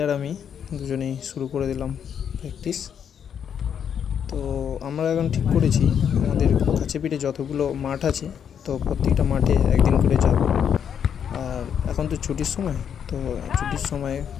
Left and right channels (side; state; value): right; quieter; 8.1 dB